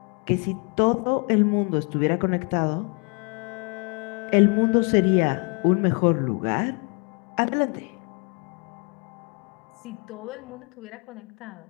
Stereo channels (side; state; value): right; quieter; 35.9 dB